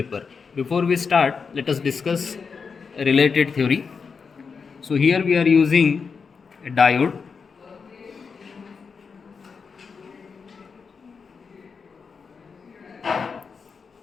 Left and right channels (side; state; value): right; quieter; 5.5 dB